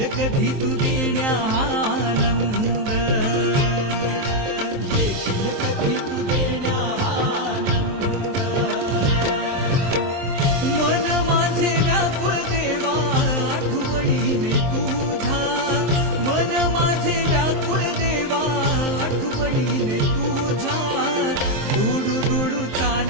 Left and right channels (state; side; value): late; left; 23 ms